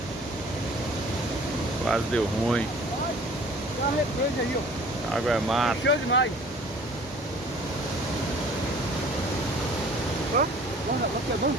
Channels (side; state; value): both; normal; correlation 0.50